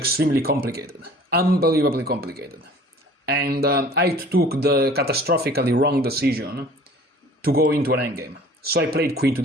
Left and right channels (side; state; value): both; normal; correlation 0.48